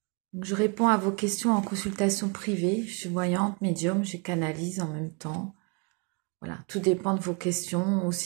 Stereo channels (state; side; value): quieter; left; 32.4 dB